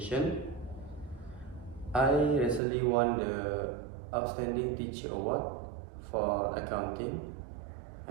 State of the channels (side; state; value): left; drops out; at 2.6 s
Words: I recently won the Outstanding Teacher Award for accounting,